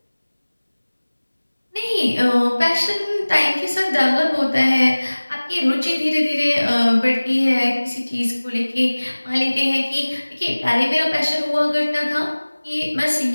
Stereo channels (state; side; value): inverted; both; correlation -1.00